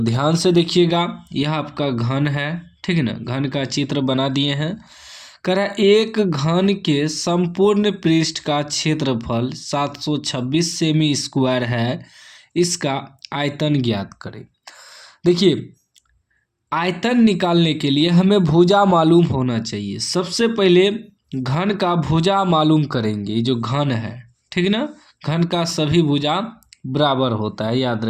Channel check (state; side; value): identical; both; correlation 1.00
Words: से देखिएगा, यह आपका घन है, ठीक है ना। घन का चित्र बना दिए हैं। कह रहा है एक घन के संपूर्ण पृष्ठ का क्षेत्रफल 726 सेमी स्क्वायर है। इसका आयतन ज्ञात करें। देखिए, आयतन निकालने के लिए हमें भुजा मालूम होना चाहिए। सबसे पहले घन का भुजा मालूम करेंगे। ये जो घन है, ठीक है ना, घन का सभी भुजा बराबर होता है, याद